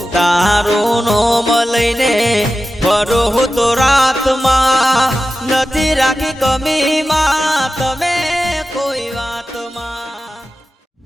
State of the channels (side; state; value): both; normal; correlation 0.93